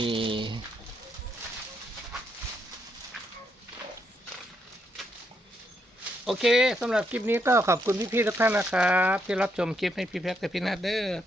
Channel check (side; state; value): both; normal; correlation 0.77